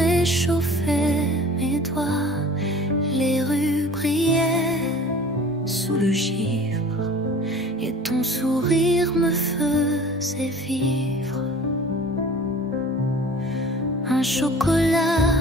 mes doigts. Les rues brillaient sous le givre et ton sourire me faisait vivre. Un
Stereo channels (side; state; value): both; normal; correlation 0.45